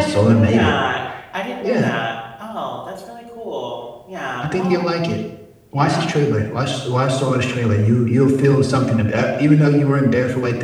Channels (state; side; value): identical; both; correlation 1.00